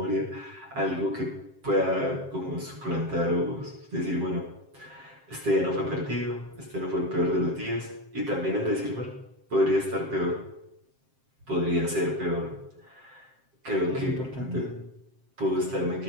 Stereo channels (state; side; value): late; left; 7.6 ms